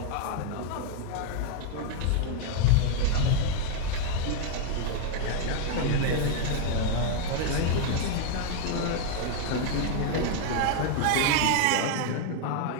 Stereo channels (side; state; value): both; different; correlation 0.00